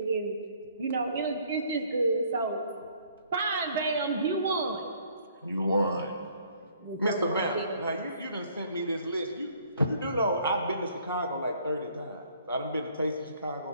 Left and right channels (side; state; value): both; inverted; correlation -0.61